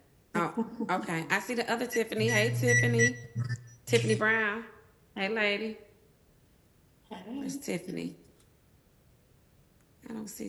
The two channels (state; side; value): identical; both; correlation 1.00